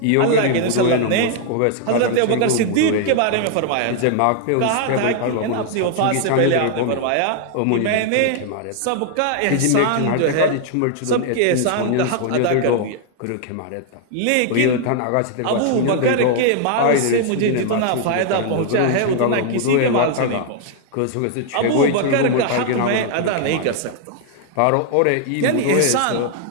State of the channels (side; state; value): both; different; correlation 0.00